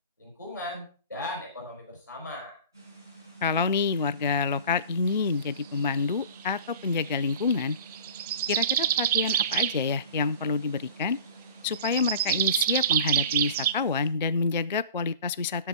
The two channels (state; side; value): inverted; both; correlation -0.39